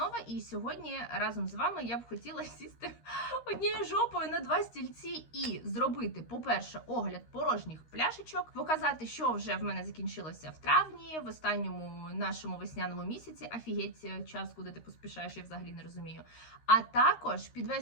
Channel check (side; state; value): right; late; 13 ms